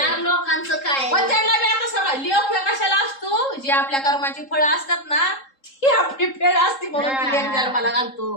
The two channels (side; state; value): right; late; 3.7 ms